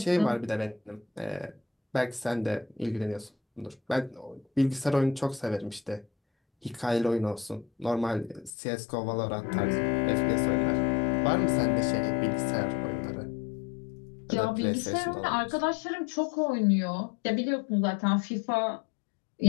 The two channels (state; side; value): drops out; right; at 8.5 s